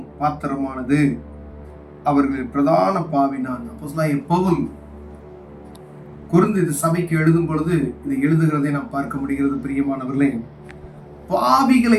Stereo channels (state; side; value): identical; both; correlation 1.00